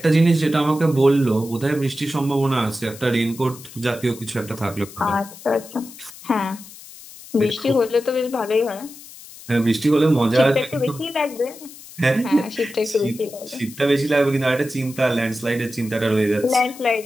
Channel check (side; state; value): left; noise; hiss, 18 dB below the sound